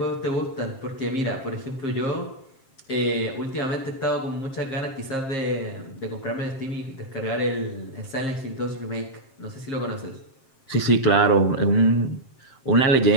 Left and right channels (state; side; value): late; right; 7.5 ms